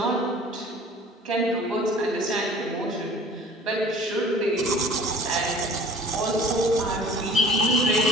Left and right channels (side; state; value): both; normal; correlation 0.48